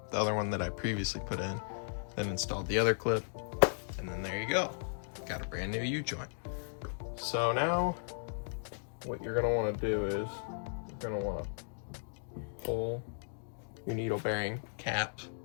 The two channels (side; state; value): right; silent; digital silence